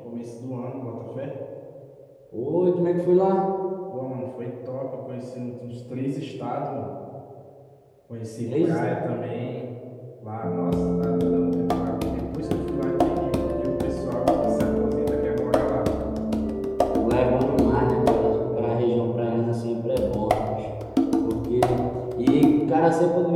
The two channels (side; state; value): both; identical; correlation 1.00